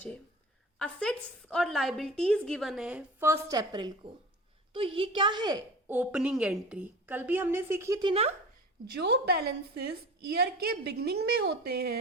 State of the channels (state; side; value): normal; both; correlation 0.36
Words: असेट्स और लाइबिलिटीज गिवन है 1 अप्रैल को, तो ये क्या है, ओपनिंग एंट्री। कल भी हमने सीखी थी ना, जो बैलेंसेस ईयर के बिगनिंग में होते